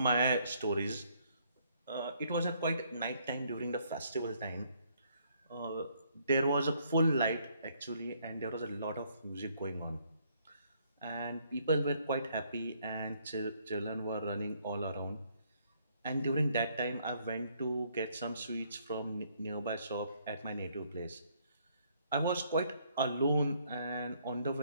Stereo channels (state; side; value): inverted; both; correlation -0.67